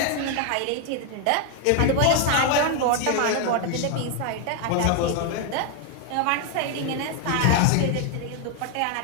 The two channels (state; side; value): different; both; correlation 0.01